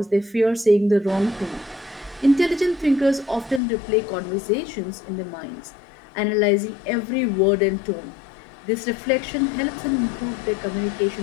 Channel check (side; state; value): right; drops out; at 3.6 s